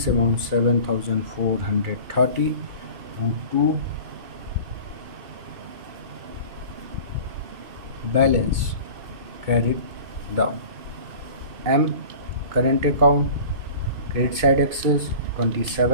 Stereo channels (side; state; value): left; late; 2.5 ms